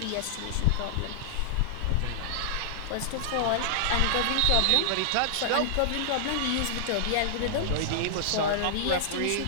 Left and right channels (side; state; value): both; different; correlation -0.01